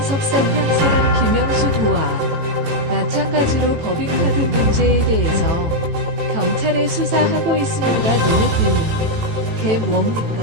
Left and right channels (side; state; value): left; late; 18 ms